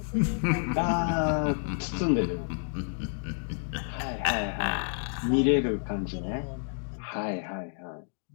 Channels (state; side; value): silent; right; digital silence